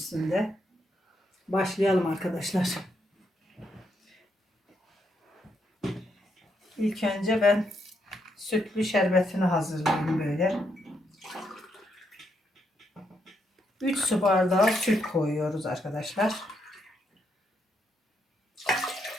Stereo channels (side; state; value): both; normal; correlation 0.78